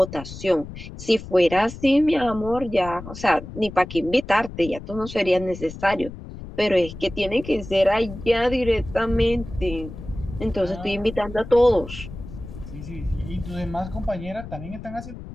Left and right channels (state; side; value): noise; left; rumble, 12 dB below the sound